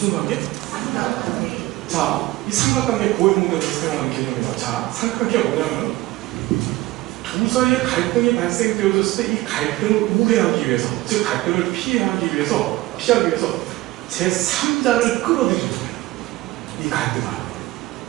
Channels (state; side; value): quieter; left; 18.5 dB